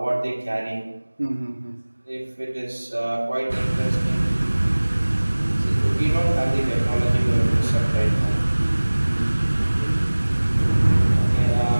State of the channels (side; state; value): both; inverted; correlation -1.00